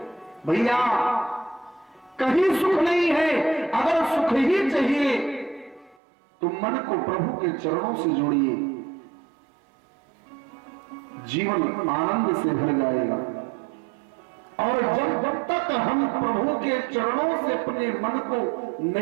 भैया कहीं सुख नहीं है। अगर सुख ही चाहिए तो मन को प्रभु के चरणों से जोड़िए, जीवन आनंद से भर जाएगा। और जब तक हम प्रभु के चरणों से अपने मन को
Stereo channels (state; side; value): drops out; left; at 6.0 s